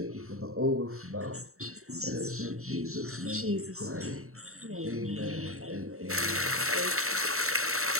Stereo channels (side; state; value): left; late; 0.63 ms